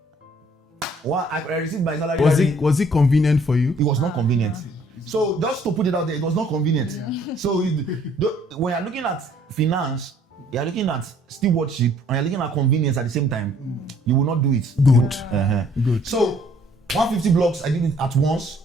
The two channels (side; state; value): both; normal; correlation 0.60